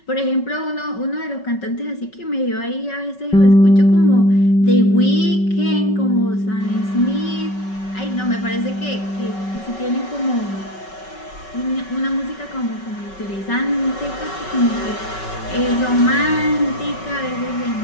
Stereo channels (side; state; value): right; late; 5.3 ms